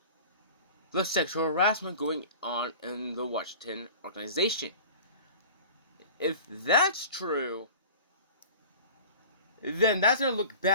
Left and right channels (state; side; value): inverted; both; correlation -0.41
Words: the sexual harassment going on in the Washington organization. If that's true, then that's going to look